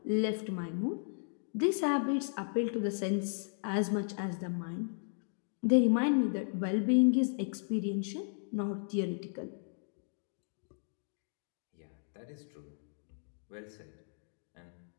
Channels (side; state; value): right; silent; digital silence